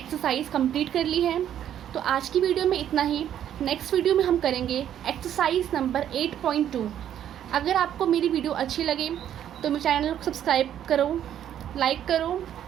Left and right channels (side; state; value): left; quieter; 10.4 dB